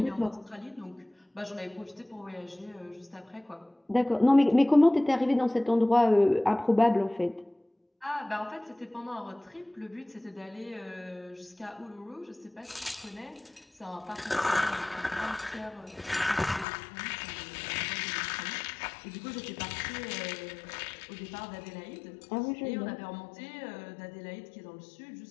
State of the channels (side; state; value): right; drops out; at 16.7 s